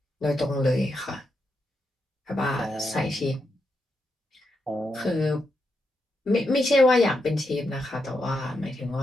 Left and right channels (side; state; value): both; normal; correlation 0.84